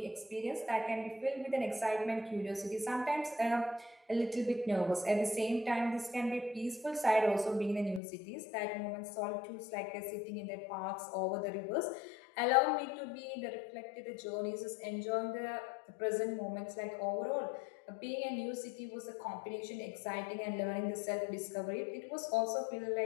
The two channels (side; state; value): right; drops out; at 8.0 s